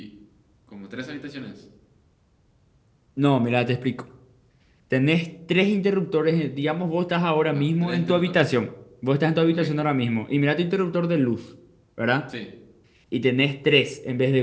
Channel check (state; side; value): identical; both; correlation 1.00